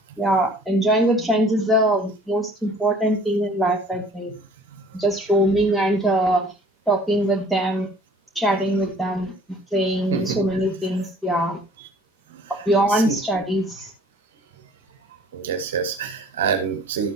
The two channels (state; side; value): normal; both; correlation 0.52